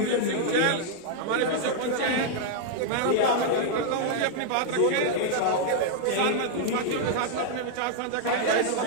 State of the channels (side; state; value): both; different; correlation 0.00